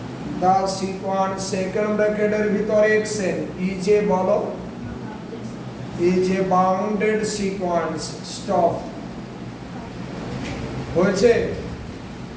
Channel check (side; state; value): both; identical; correlation 1.00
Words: the sequence second ব্র্যাকেটের ভিতরে xn is a বলো is a bounded sequence। Stop. হয়েছে?